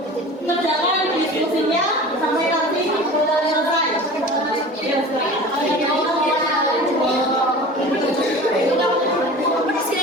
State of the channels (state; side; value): normal; both; correlation 0.38